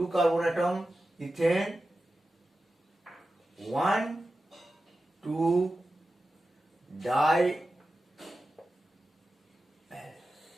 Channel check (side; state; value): both; normal; correlation 0.93